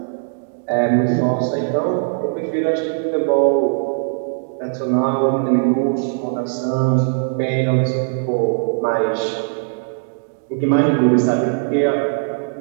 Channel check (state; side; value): silent; left; digital silence